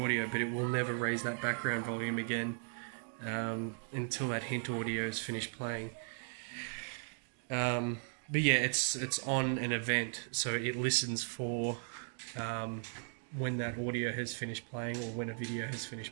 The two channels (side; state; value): left; silent; 53 dB below the other